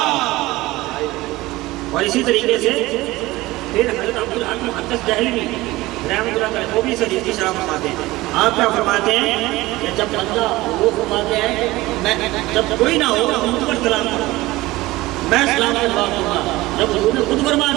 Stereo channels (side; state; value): left; quieter; 19.1 dB